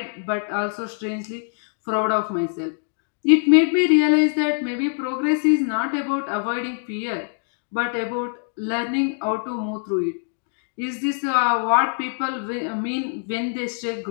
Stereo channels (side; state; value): right; silent; 63 dB below the other